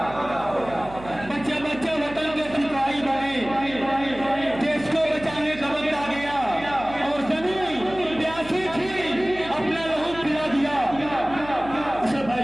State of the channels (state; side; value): noise; right; hum, 16 dB below the sound